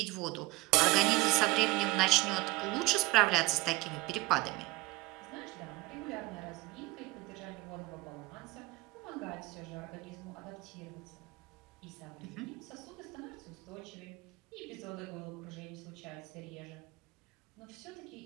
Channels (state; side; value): quieter; left; 21.2 dB